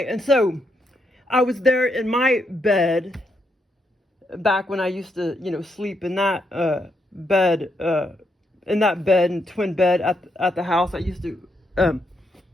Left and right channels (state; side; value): normal; both; correlation 0.79